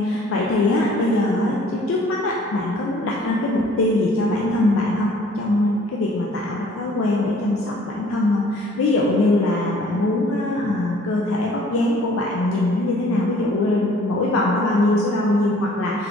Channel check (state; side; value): normal; both; correlation 0.55